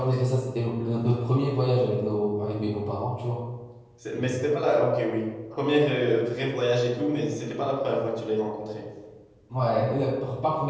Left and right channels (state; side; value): identical; both; correlation 1.00